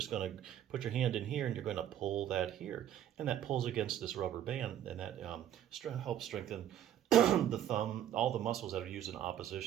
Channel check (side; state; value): left; quieter; 11.0 dB